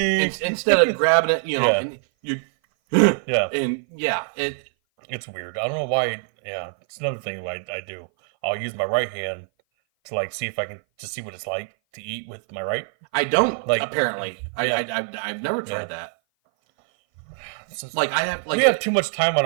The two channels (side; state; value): left; silent; 57 dB below the other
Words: instead of grabbing it, you know, Yeah. and you, yeah, and yeah, it's weird. I don't know why. Yeah, it's another thing I do. I'll use my right hand to like see if I can just see what it's like to eat with my right. I don't, Like, apparently. yeah. I've never tried Yeah. that. So Like, I have, like, we have too much time on